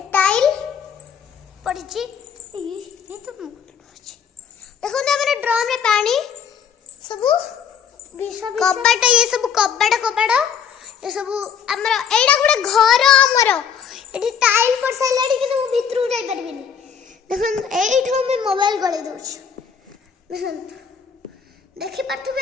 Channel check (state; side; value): quieter; right; 7.4 dB